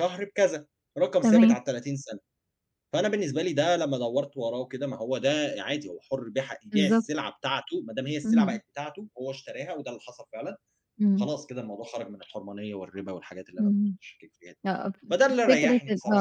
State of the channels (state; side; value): identical; both; correlation 1.00